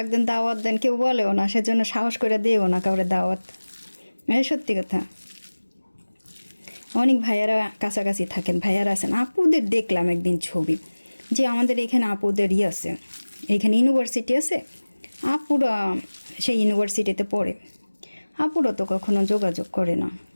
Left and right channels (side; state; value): both; inverted; correlation -1.00